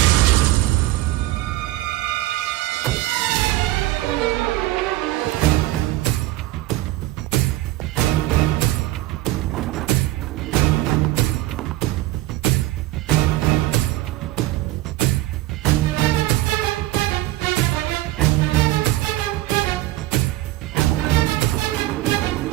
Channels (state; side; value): quieter; left; 17.0 dB